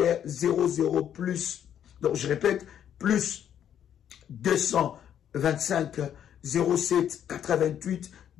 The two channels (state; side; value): quieter; right; 9.7 dB